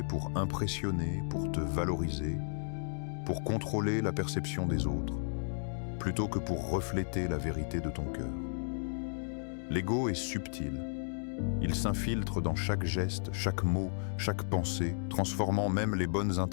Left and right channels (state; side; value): silent; right; digital silence